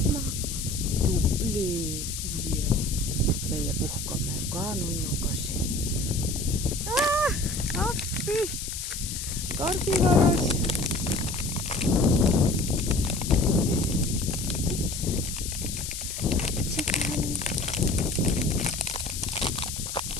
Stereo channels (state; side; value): noise; left; hiss, 6 dB below the sound